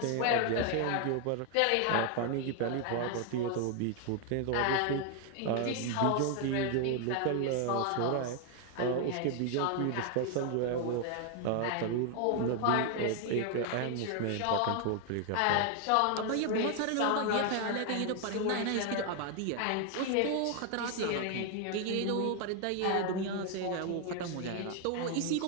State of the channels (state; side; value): different; both; correlation 0.01